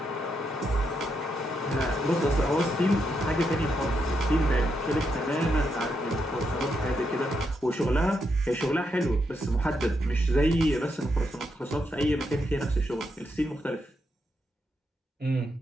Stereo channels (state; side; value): normal; both; correlation 0.81